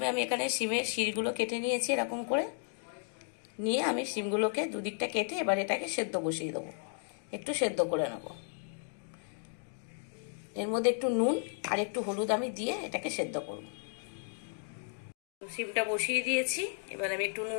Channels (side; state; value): right; silent; 55 dB below the other